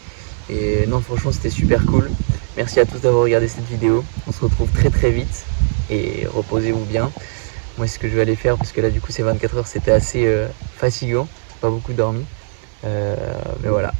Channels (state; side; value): silent; left; digital silence